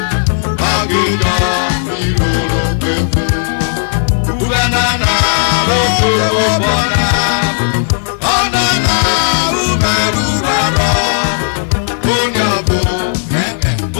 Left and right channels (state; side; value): silent; right; 62 dB below the other